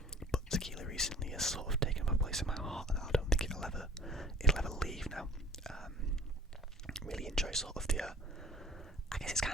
But tequila recently has sort of taken my place in my heart, and I don't think it'll ever leave now. Really enjoy sort of the, I guess it's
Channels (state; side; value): normal; both; correlation 0.50